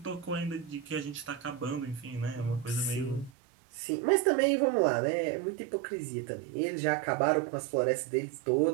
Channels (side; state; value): left; drops out; at 3.3 s